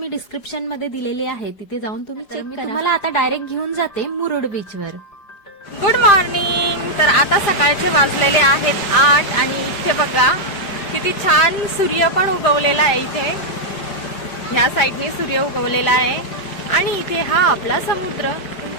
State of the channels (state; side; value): late; right; 5.0 ms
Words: डिस्क्रिप्शन मध्ये दिलेली आहे, तिथे जाऊन तुम्ही चेक करा. तुम्हाला आता डायरेक्ट घेऊन जाते मुरुड बीचवर. Good morning. तर आता सकाळचे वाजलेले आहेत 8 आणि इथे बघा किती छान सूर्य पण उगवलेला आहे. इथे ह्या साईडने सूर्य उगवलेला आहे आणि इथे हा आपला समुद्र.